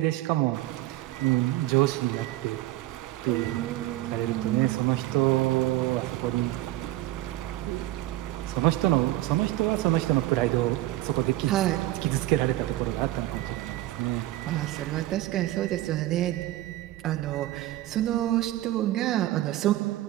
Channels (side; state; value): left; quieter; 15.9 dB